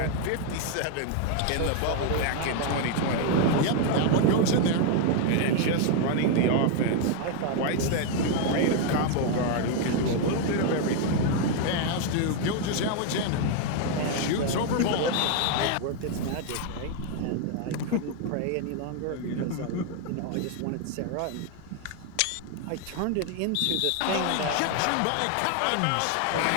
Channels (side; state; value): both; different; correlation 0.01